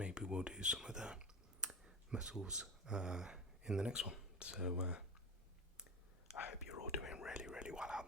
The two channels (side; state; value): both; normal; correlation 0.25